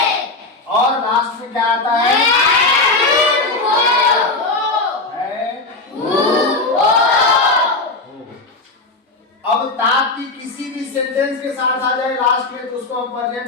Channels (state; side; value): quieter; right; 3.3 dB